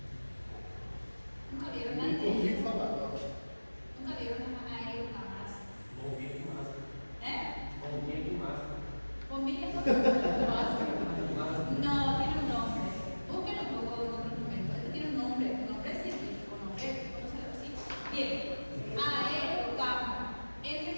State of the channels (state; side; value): inverted; both; correlation -1.00